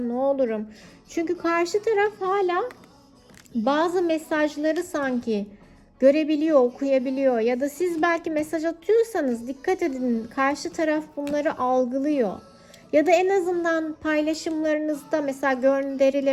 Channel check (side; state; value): both; identical; correlation 1.00